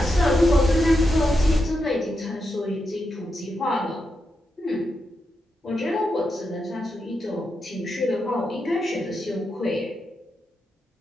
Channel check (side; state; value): both; normal; correlation 0.86